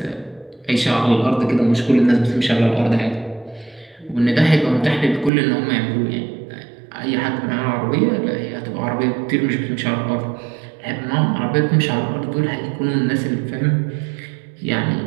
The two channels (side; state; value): left; drops out; at 5.3 s